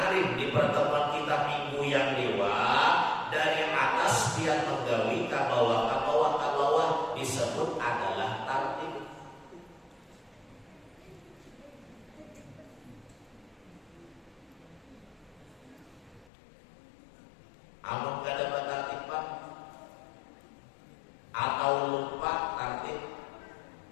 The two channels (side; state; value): right; drops out; at 16.3 s